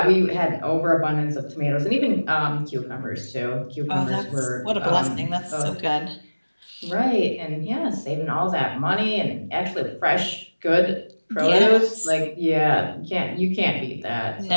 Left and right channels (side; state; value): both; inverted; correlation -1.00